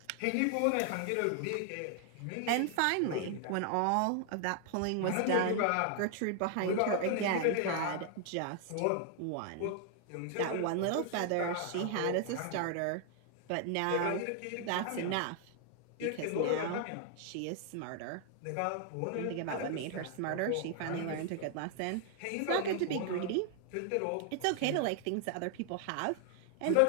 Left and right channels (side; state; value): both; different; correlation 0.00